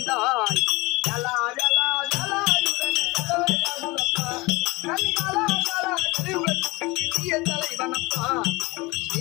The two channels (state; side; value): quieter; right; 23.2 dB